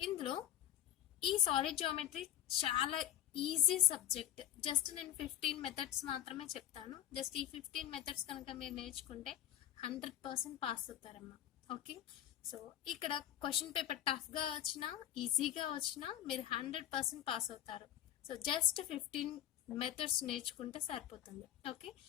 ఇందులో ఈ సాలిడ్ జామెట్రీ చాలా ఈజీ సబ్జెక్ట్. జస్ట్ నేను 15 మెథడ్స్ మాత్రమే చెప్తాను. జస్ట్ ఈ 15 మెథడ్స్ కనుక మీరు నేర్చుకుంటే 100% పాస్ అవుతారమ్మా. ఓకే, సో ఇక్కడ క్వశ్చన్ పేపర్ టఫ్గా వచ్చినా ఈజీగా వచ్చినా మీరు 100% పాస్ అవుతారు. సో జస్ట్ 15 మెథడ్స్ నేర్చుకుంటే సరిపోతుంది. ఓకే,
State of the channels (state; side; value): quieter; right; 11.9 dB